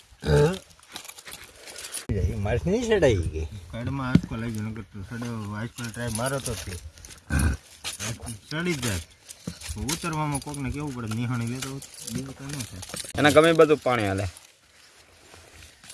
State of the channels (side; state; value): both; identical; correlation 1.00